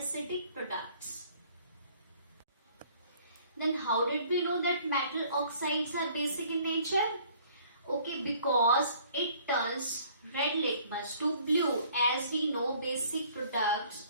products. Then how did we know that metal oxides are basic in nature? Okay, because it turns red litmus to blue. As we know, basic products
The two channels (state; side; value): inverted; both; correlation -0.57